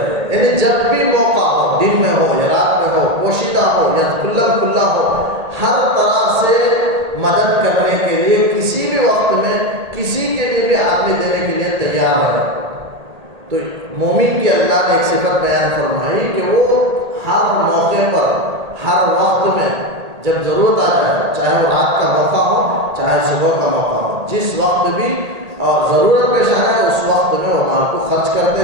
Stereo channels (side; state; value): left; late; 1.8 ms